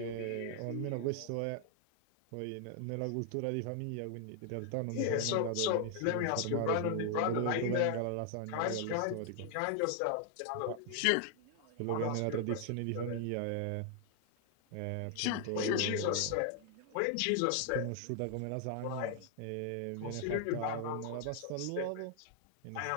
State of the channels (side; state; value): both; different; correlation 0.00